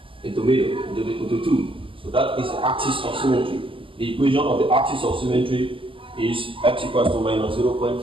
into middle, into 2. So that is the axis of symmetry. The equation of the axis of symmetry is x equals to minus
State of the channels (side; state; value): left; late; 0.25 ms